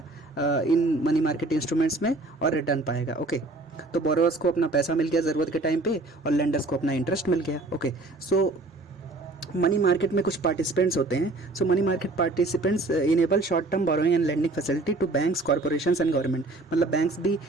इन मनी मार्केट इंस्ट्रूमेंट्स में और रिटर्न पाएगा। ओके, तो बोरोवर्स को अपना पैसा मिल गया ज़रूरत के टाइम पे और लेंडर्स को अपना इंटरेस्ट मिल गया। ओके, सो मनी मार्केट में कुछ पार्टिसिपेंट्स होते हैं। So money market participants enable short term borrowing and lending facility to banks, corporations and government, मतलब बैंक्स भी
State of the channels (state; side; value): quieter; left; 3.0 dB